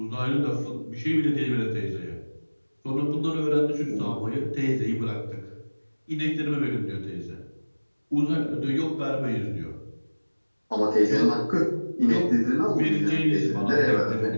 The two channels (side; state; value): both; inverted; correlation -1.00